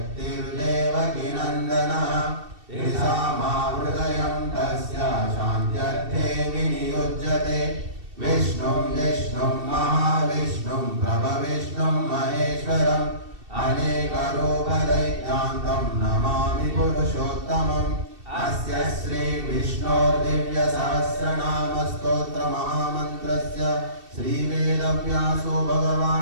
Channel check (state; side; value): late; left; 2.7 ms